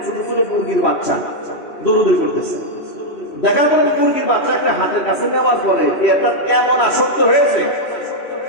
ছোট ছোট মুরগির বাচ্চা দৌড়দৌড়ি করতেছে। দেখার পরে মুরগির বাচ্চা একটা হাতের কাছে নেওয়ার পরে এটা এমন আসক্ত হয়েছে,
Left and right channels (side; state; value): right; late; 3.1 ms